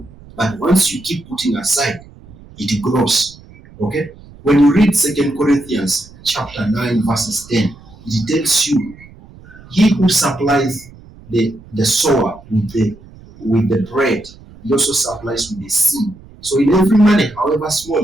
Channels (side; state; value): right; noise; rumble, 22 dB below the sound